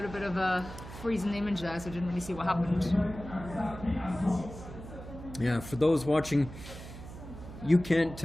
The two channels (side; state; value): right; noise; hum, 13 dB below the sound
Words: bit of a freezing image there, so I didn't really see what happened. Yeah, for those watching, you can't